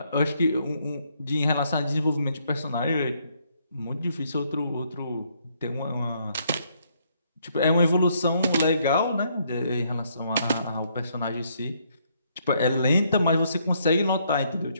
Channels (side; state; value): both; inverted; correlation -0.71